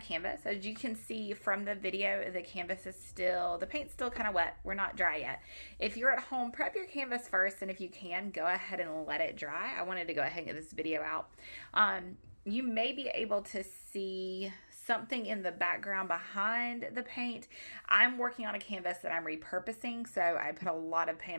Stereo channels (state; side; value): inverted; both; correlation -1.00